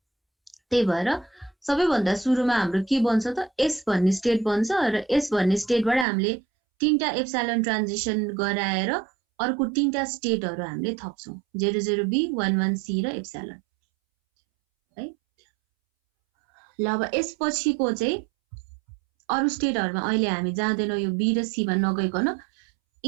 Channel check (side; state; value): left; drops out; at 6.1 s